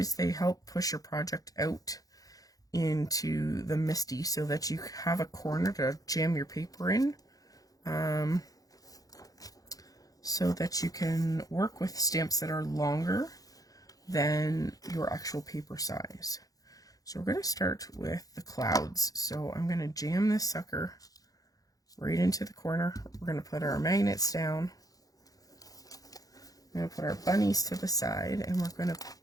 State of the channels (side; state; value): right; late; 0.17 ms